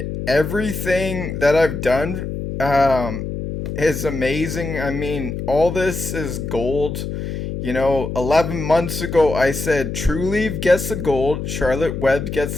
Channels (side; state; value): left; noise; hum, 5 dB below the sound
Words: everything that I've done is amazing. I mean, all this is gold. 11 months ago I said TRULIEVE gets the gold, Charlotte Web gets